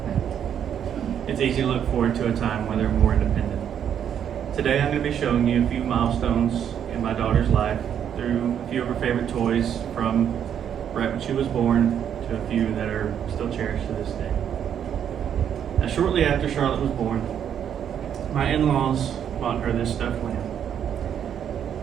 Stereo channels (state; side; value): quieter; left; 9.0 dB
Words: it's easy to look forward to a time when they're more independent. Today I'm going to be showing you a few milestones in my daughter's life through a few of her favorite toys from right when she was born to a few that are still cherished to this day. Now, shortly after Charlotte was born, my in-laws bought her this stuffed lamb.